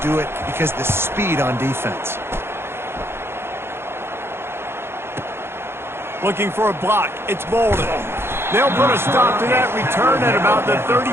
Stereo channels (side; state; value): left; late; 0.12 ms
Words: do it because of the speed on defense. Looking for a block. It's Bolden. They'll put a stop to that return at about the